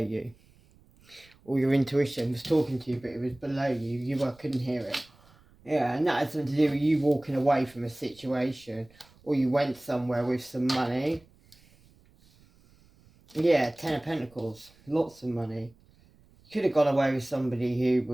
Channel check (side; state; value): right; noise; rumble, 29 dB below the sound